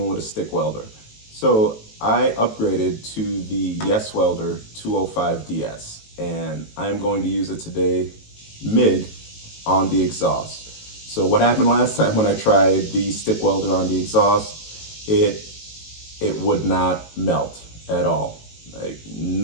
with a stick welder. So I upgraded to the Yes Welder 205DS, and I'm going to use it today mid on the exhaust. So what happened last time when I tried the stick welder on the exhaust, it would not melt at all. Like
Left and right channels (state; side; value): late; right; 18 ms